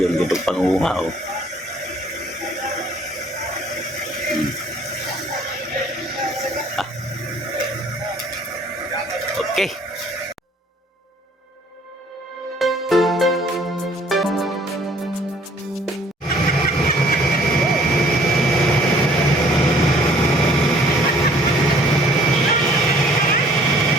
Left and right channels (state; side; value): normal; both; correlation 0.57